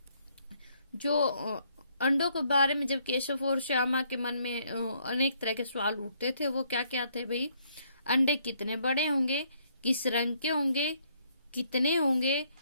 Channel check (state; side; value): inverted; both; correlation -0.69